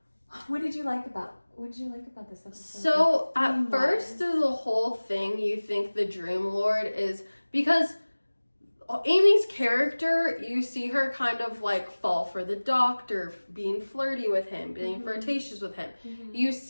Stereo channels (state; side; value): inverted; both; correlation -1.00